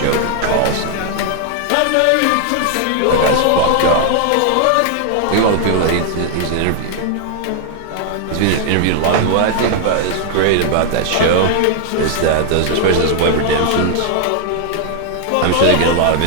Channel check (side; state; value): both; different; correlation 0.00